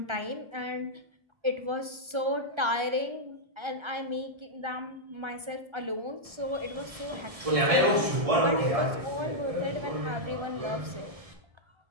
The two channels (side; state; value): left; late; 1.3 ms